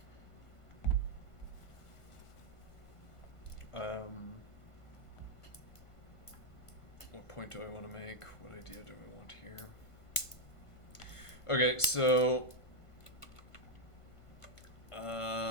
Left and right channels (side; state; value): right; late; 1.5 ms